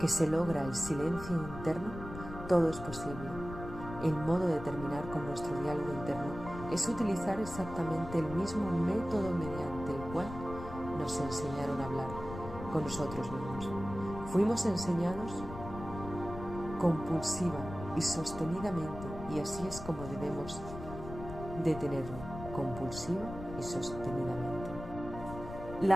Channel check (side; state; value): left; noise; rumble, 11 dB below the sound